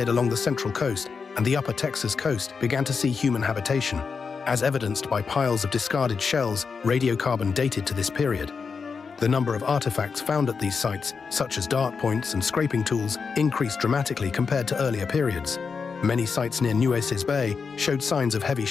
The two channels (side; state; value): right; quieter; 5.4 dB